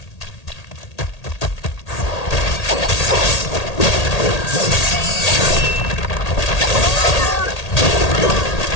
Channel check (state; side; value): late; right; 1.8 ms